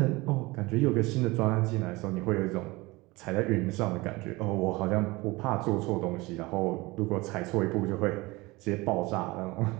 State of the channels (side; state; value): left; quieter; 22.4 dB